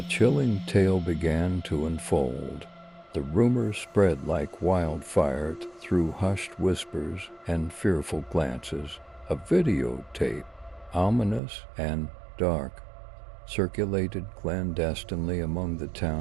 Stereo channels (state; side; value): drops out; left; at 11.4 s